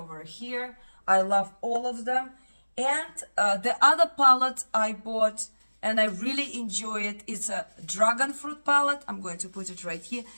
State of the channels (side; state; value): both; inverted; correlation -1.00